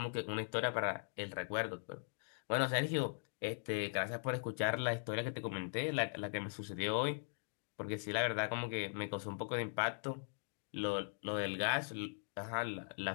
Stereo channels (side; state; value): right; silent; digital silence